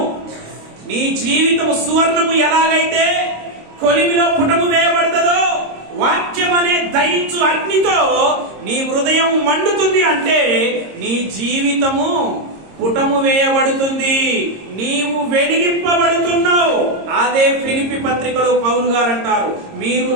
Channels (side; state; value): left; late; 26 ms